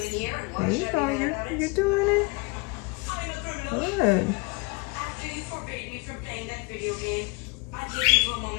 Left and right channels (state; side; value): quieter; right; 28.0 dB